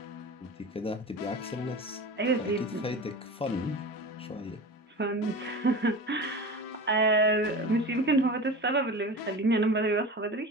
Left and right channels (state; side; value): normal; both; correlation 0.32